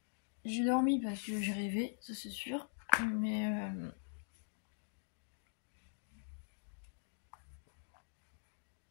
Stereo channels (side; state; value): right; silent; digital silence